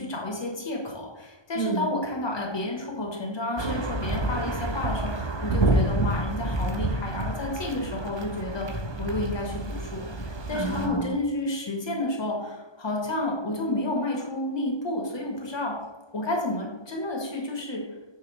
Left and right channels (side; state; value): right; late; 1.2 ms